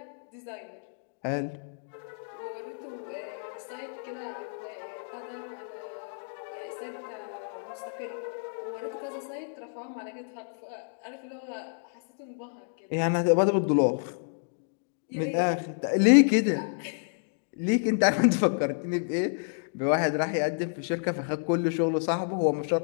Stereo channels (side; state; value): right; silent; digital silence